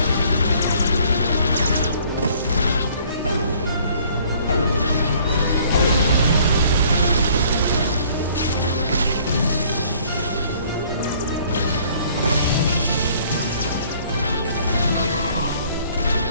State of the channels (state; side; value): inverted; both; correlation -0.58